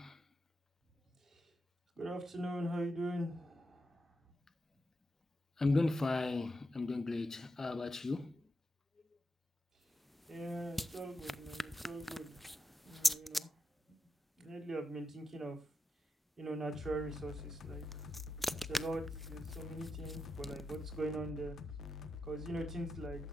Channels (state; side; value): normal; both; correlation 0.87